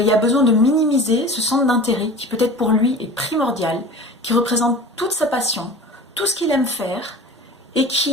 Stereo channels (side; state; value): both; normal; correlation 0.38